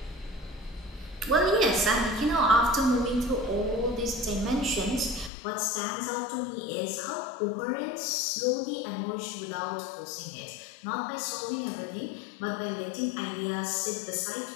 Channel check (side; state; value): right; drops out; at 5.3 s